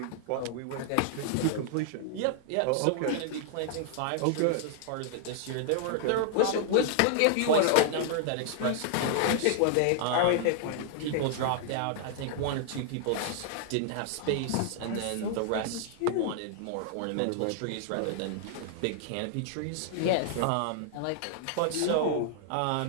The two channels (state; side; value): different; both; correlation -0.01